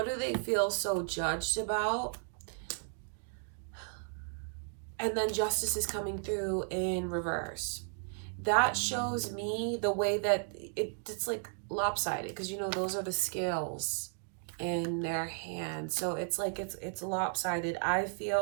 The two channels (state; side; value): silent; left; 55 dB below the other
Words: do they feel so judged about? And then Justice is coming through in reverse. That shows me the way that it's like lopsided, because you know those are the scales in their hand. So it's like it's lopsided. I